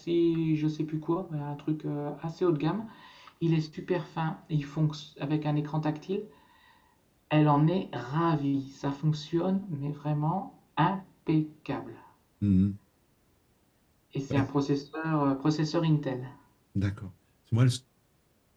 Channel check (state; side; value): identical; both; correlation 1.00